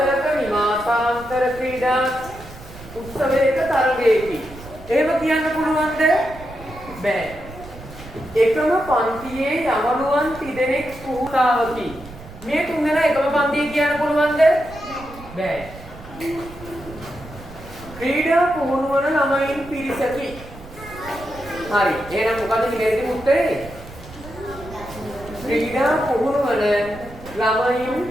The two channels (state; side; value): noise; right; rumble, 16 dB below the sound